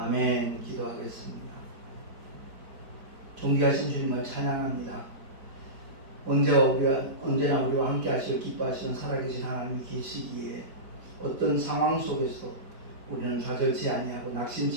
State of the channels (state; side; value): late; left; 4.5 ms